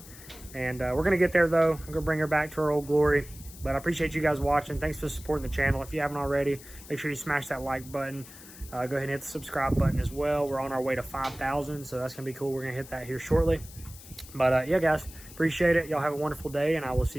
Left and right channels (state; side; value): noise; left; hiss, 18 dB below the sound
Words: And we're going to get there, though. I'm going to bring her back to her old glory. But I appreciate you guys watching. Thanks for supporting the channel. If you haven't already, make sure you smash that like button. Go ahead and hit the subscribe button as well. We're on our way to 5,000, so that's going to be cool. We're going to hit that here shortly. But, yeah, guys, appreciate it. Y'all have a wonderful day, and I will